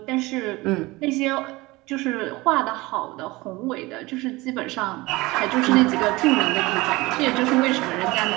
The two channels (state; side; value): quieter; left; 21.5 dB